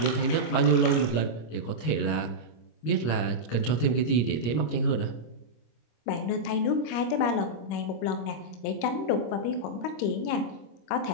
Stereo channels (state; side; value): late; right; 25 ms